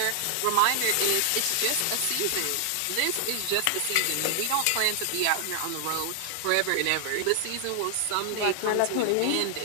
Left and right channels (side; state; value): both; different; correlation 0.00